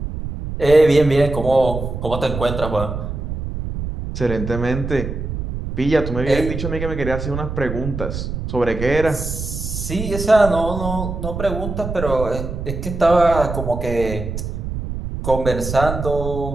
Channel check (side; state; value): right; noise; rumble, 6 dB below the sound